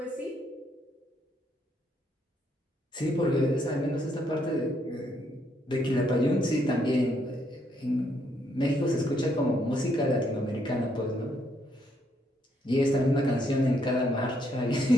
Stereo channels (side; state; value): both; normal; correlation 0.73